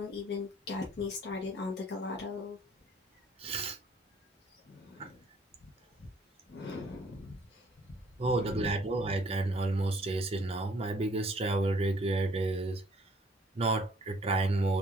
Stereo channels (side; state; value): both; normal; correlation 0.60